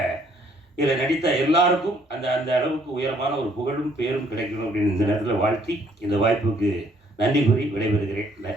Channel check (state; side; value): normal; both; correlation 0.65